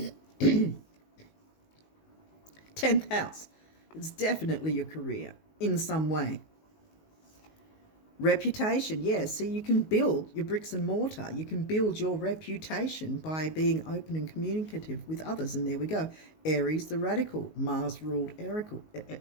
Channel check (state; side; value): late; right; 19 ms